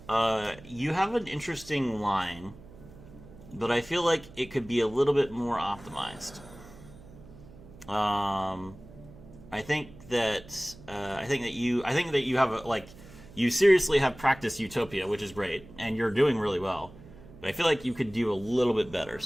You have an interesting line, but I feel like it could be a little bit more optimized. I think that you have you seriously have practiced Utopia, which is great, and you're doing really well. But I feel like you could do a little bit better.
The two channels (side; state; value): right; noise; hum, 19 dB below the sound